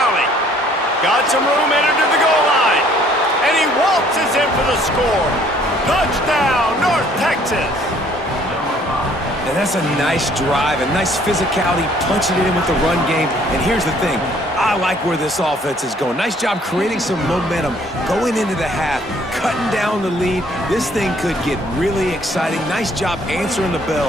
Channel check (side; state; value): both; normal; correlation 0.60